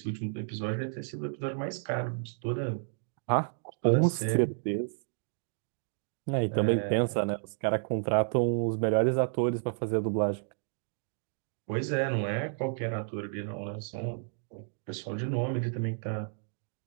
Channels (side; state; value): left; silent; digital silence